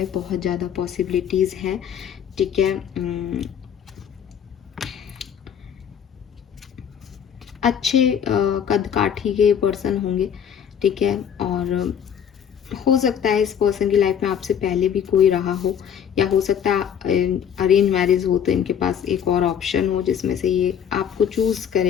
बहुत ज़्यादा पॉसिबिलिटीज़ हैं। ठीक है, अच्छे कद काठी के पर्सन होंगे। ठीक है, और हो सकता है इस पर्सन की लाइफ में आपसे पहले भी कोई रहा हो, या हो सकता है अरेंज मैरिज हो तो इनके पास एक और ऑप्शन हो जिसमें से ये आपको चूज़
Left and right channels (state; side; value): quieter; right; 8.4 dB